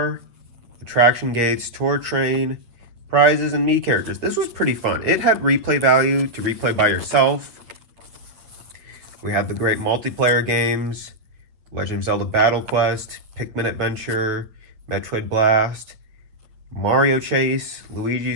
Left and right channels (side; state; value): left; late; 8.9 ms